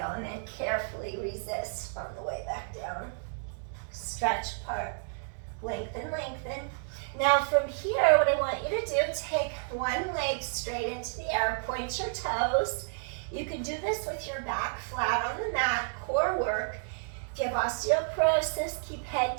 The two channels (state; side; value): silent; left; digital silence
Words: and then carefully resist on the way back down. Stretch apart, lengthen, lengthen. Now from here, what I want you to do, take one leg straight into the air, point your toes. You can do this with your back flat on the mat, core work. If you have osteoporosis, keep